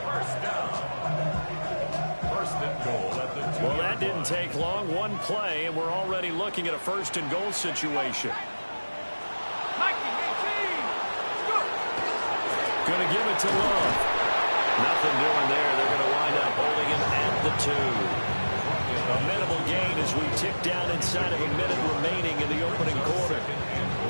first down. First and goal at the 2-yard line. Well, that didn't take long. One play, and we're already looking at a first and goal situation. Going to give it to Love. Nothing doing there. They're going to wind up holding him at the 2. A minimal gain as we tick down inside of a minute remaining in the opening quarter.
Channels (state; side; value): inverted; both; correlation -1.00